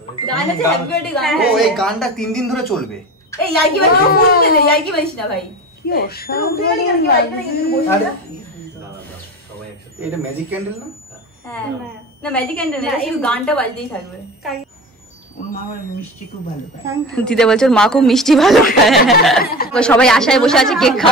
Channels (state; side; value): normal; both; correlation 0.30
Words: গান আছে হ্যাপি বার্থডে গান। ও এই গানটা 3 দিন ধরে চলবে। এই ইয়ার্কি বাজি ফুল দিলে ইয়ার্কি বাজিস না ভাই। কি অসাধারণ। এটা ম্যাজিক ক্যান্ডেল না? হ্যাঁ না ম্যাজিক ক্যান্ডেল না, শুধু গানটা বাজতেই থাকবে। ওর মা আমার মিষ্টি খুব ভালো খায়। দিদা বলছে ওর মা খুব মিষ্টি ভালো খায়। সবাই আশায় বসে আছে, কেক